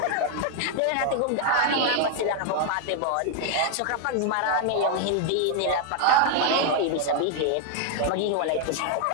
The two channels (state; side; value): different; both; correlation 0.00